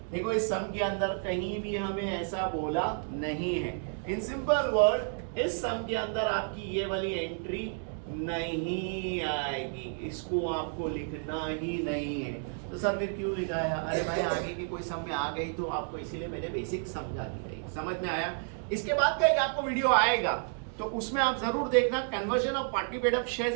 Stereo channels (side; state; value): left; silent; 57 dB below the other